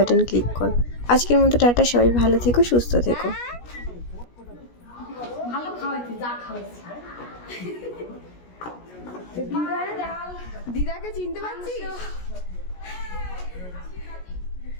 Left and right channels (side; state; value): right; late; 17 ms